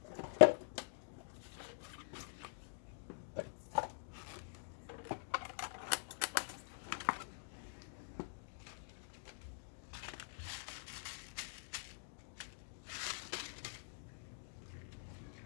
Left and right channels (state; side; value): silent; right; digital silence